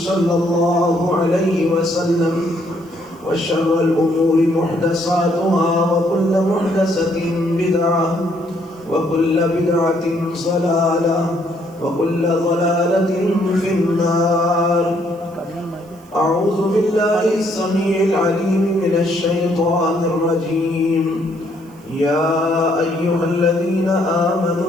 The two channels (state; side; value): noise; right; hiss, 29 dB below the sound